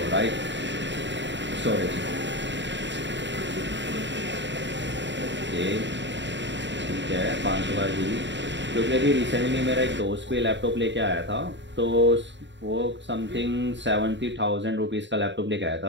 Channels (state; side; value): late; left; 0.53 ms